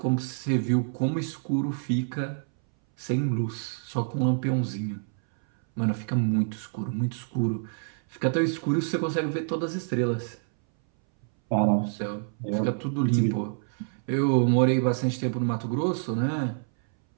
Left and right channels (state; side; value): silent; left; 60 dB below the other